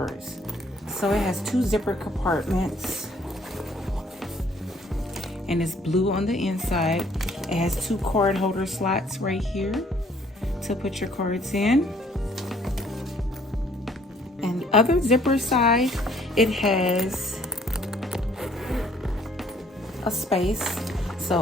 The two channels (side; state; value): both; normal; correlation 0.61